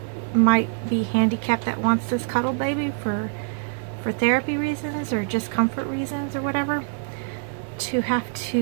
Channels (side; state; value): left; silent; digital silence